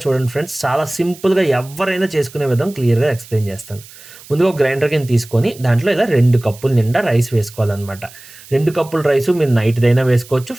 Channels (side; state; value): right; noise; hiss, 20 dB below the sound